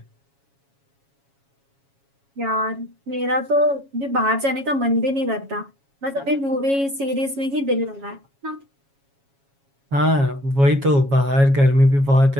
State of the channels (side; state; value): left; late; 7.2 ms